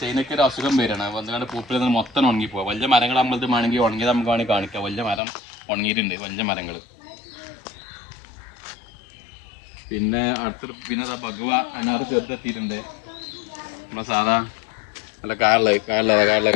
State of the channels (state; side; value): drops out; right; at 5.2 s